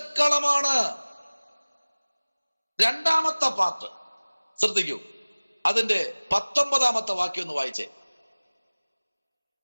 2ാമത്തെ പാർട്ട് ശ്രദ്ധിക്കൂ, അതിന്റെ 19ാമത്തെ വാക്യം ഒന്ന് വായിച്ചേ.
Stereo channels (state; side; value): inverted; both; correlation -1.00